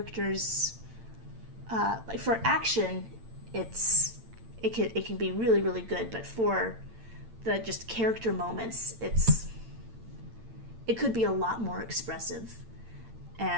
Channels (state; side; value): late; left; 8.9 ms